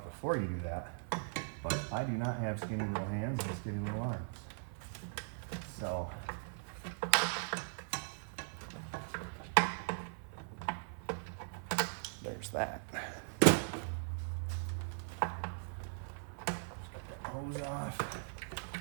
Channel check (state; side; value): silent; left; 51 dB below the other